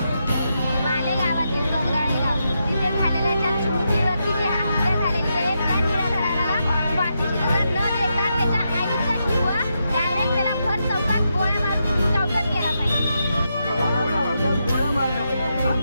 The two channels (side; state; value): both; inverted; correlation -0.84